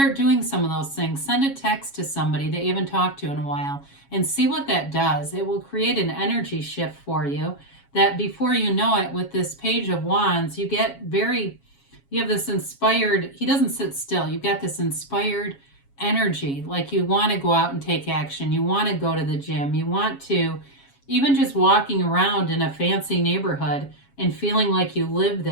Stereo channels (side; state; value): right; late; 7.2 ms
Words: doing some of those things. Send a text to somebody that you haven't talked to in a while and see what that does. It will create an energy shift for you that before you know it, with this Page of Wands, you have this inspired, he doesn't sit still. You've got this inspired energy, like you want to go out and take action. You want to go to the gym. You want to, even just walking around in a fancy neighborhood and feeling like you live